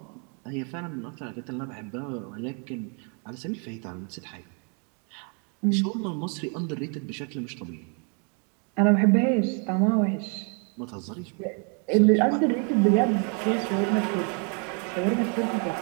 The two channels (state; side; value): quieter; left; 37.9 dB